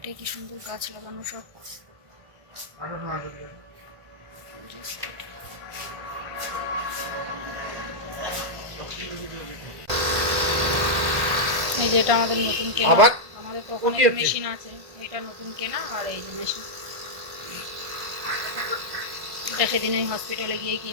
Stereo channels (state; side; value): late; left; 1.5 ms